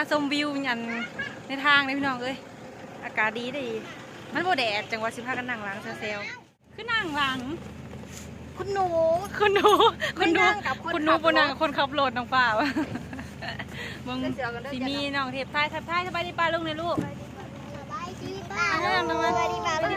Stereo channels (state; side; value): identical; both; correlation 1.00